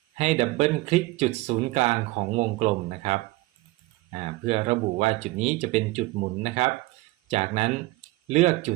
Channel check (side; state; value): left; quieter; 20.7 dB